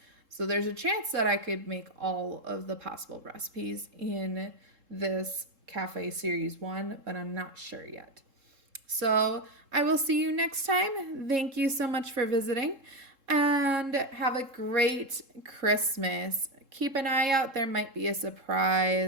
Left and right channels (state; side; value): late; left; 3.7 ms